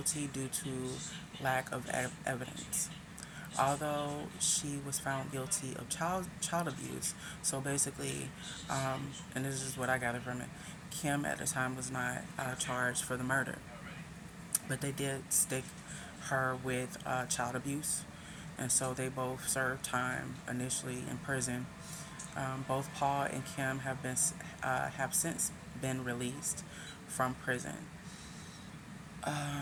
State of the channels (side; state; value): both; identical; correlation 1.00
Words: due to lack of evidence. Although she was found guilty of child abuse, so basically, and this is what I gathered from it, Kim at the time was not charged for the murder, but they did stick her with child abuse, and so they both served time initially in prison. Both Paul and Kim have since been released from prison.